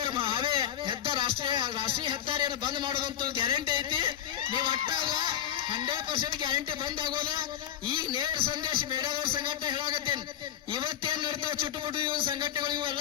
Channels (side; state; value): right; quieter; 10.6 dB